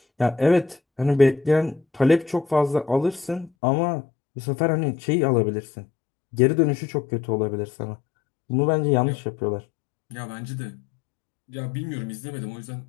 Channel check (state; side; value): drops out; right; at 3.5 s